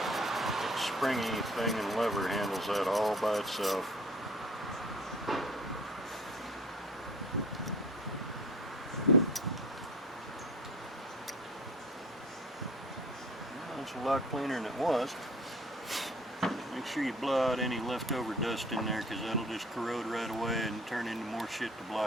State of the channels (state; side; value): normal; both; correlation 0.47